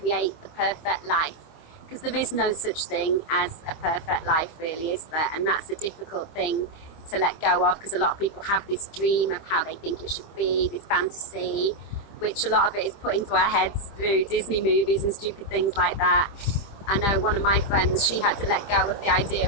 the perfect life, because there is no such thing as a perfect life really, is there? And that's a difficult thing to let go of, because a lot of people have this dream of how they think it should be, this fantasy, which a lot of it is put into our heads through Disney movies and stupid things like that. I know one of my friends, she had to let go of the idea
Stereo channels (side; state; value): right; late; 25 ms